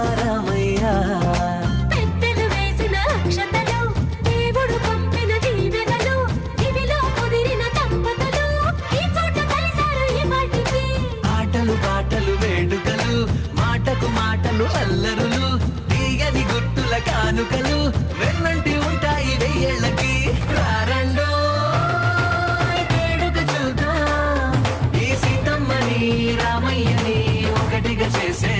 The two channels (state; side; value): identical; both; correlation 1.00